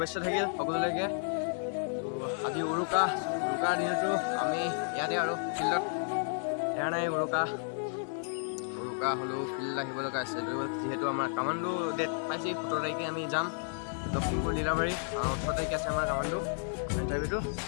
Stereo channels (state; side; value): silent; right; digital silence